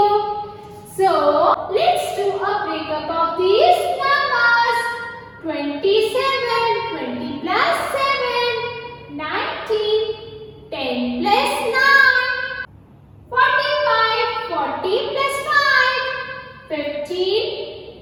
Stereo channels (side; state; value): both; identical; correlation 1.00